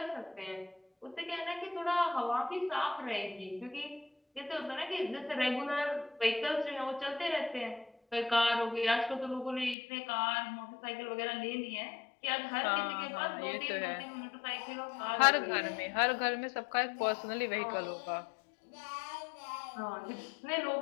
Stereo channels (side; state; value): right; drops out; at 9.8 s